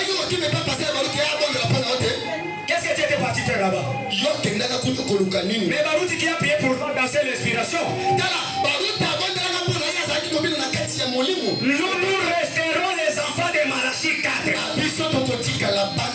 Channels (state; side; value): identical; both; correlation 1.00